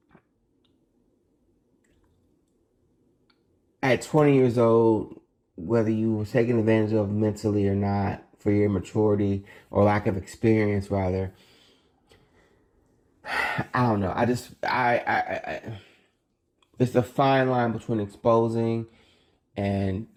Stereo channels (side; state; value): both; identical; correlation 1.00